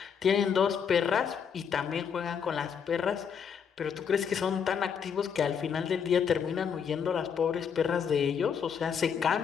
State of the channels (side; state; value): right; quieter; 7.1 dB